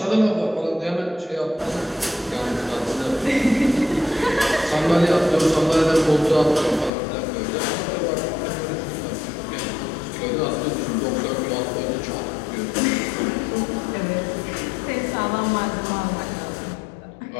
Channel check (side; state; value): right; drops out; at 6.9 s